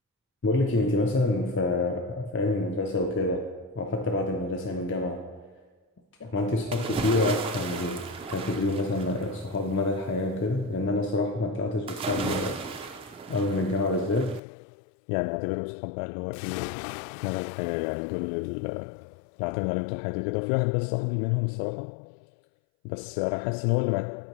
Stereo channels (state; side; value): drops out; right; at 14.4 s